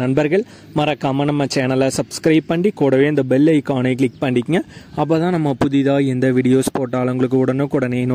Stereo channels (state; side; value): identical; both; correlation 1.00